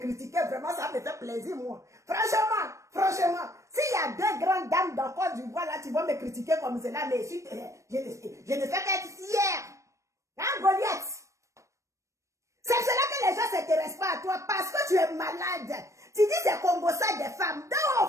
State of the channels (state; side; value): late; left; 0.15 ms